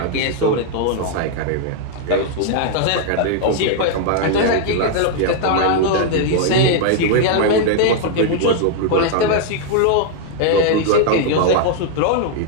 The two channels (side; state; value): both; different; correlation 0.00